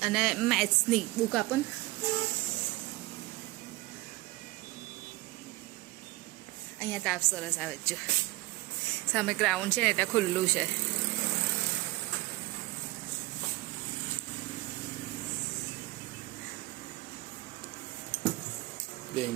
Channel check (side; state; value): left; quieter; 21.0 dB